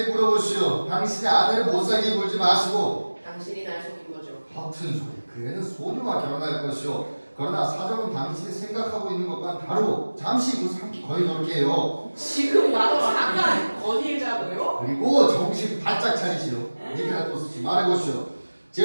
물어보시오. 당신의 아내를 못 살게 굴지 마시고. 당신이 날 속인 거죠. 허튼 소리. 그 애는 소녀와 결혼할 것이오. 그러나 사정은 당신이 생각하고 있는 것과는 다르고 잠시 후 삼기 거의 놀게요. 지금 나도 잠깐 건의자고요. 그리고 정신 바짝 차리시오. 니케라토스 씨 말해보시오.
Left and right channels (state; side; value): inverted; both; correlation -1.00